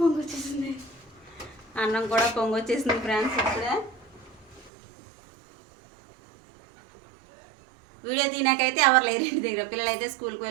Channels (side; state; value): left; drops out; at 4.7 s